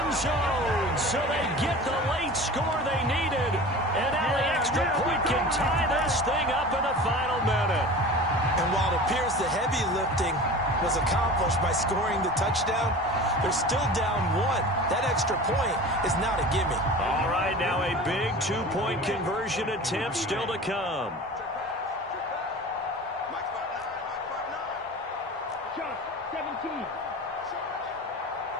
zone. So they get the late score they needed. And now the extra point can tie this thing up in the final minute. And while it appears the heavy lifting was accomplished by scoring the touchdown, they're still down 1. That extra point is not a gimme. All right, now a big 2-point conversion attempt still to come.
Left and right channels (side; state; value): both; normal; correlation 0.36